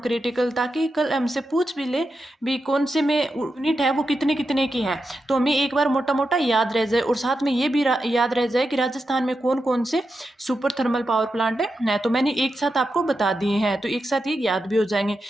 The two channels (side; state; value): both; normal; correlation 0.88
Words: ताकि कल हमसे पूछ भी ले भी कौन से में यूनिट है वो कितने कितने की है, तो हमें एक बार मोटा मोटा याद रह जाए। और साथ में ये भी याद रह जाए कि राजस्थान में कौन कौन से सुपर थर्मल पावर प्लांट है, तो मैंने एक साथ आपको बता दिए हैं, तो एक साथ ये याद भी हो जाएंगे।